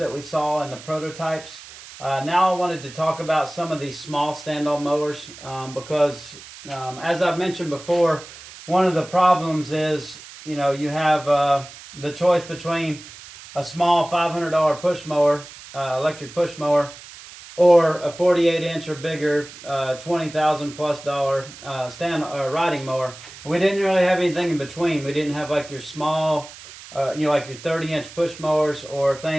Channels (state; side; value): noise; right; hiss, 17 dB below the sound